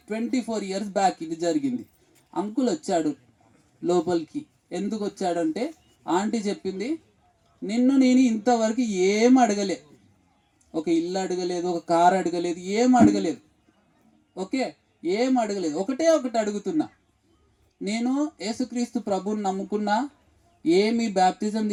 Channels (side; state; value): both; identical; correlation 1.00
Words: 24 ఇయర్స్ బ్యాక్ ఇది జరిగింది. అంకుల్ వచ్చాడు లోపలికి. ఎందుకు వచ్చాడంటే ఆంటీ చెప్పింది, నిన్ను నేను ఇంతవరకు ఏం అడగలే, ఒక ఇల్లు అడగలేదు, ఒక కారు అడగలేదు, ఏం అడగలేదు. ఓకే, ఏం అడగలేదు. ఒకటే ఒకటి అడుగుతున్నా, నేను యేసుక్రీస్తు ప్రభువుని నమ్ముకున్నా, ఏమి బ్యాప్తిజం